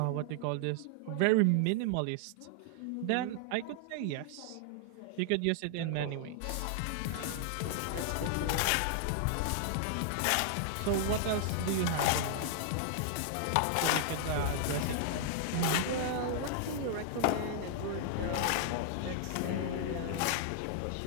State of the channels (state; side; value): different; both; correlation -0.01